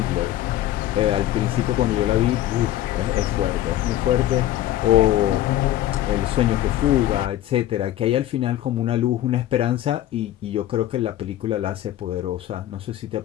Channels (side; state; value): right; quieter; 13.3 dB